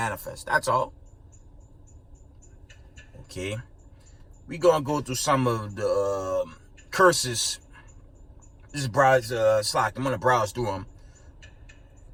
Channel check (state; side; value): identical; both; correlation 1.00